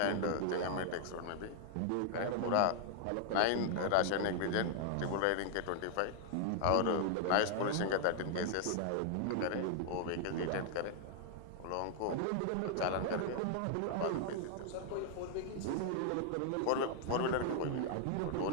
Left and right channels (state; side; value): different; both; correlation 0.00